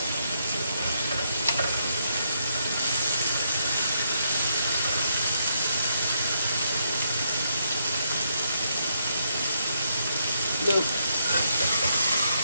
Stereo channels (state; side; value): inverted; both; correlation -0.76